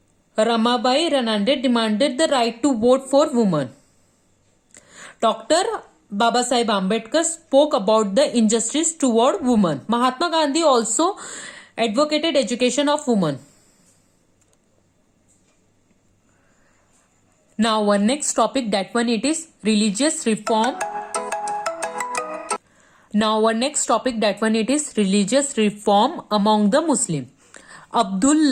Ramabai Ranande demanded the right to vote for women. Dr. Babasaheb Ambedkar spoke about the injustice toward women. Mahatma Gandhi also advocated education of women. Now our next topic, that one it is religious reform. Religious reform among the Muslims. Abdul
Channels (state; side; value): identical; both; correlation 1.00